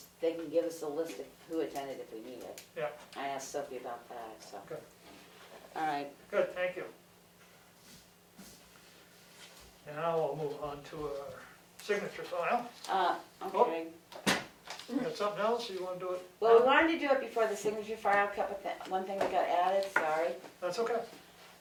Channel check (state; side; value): identical; both; correlation 1.00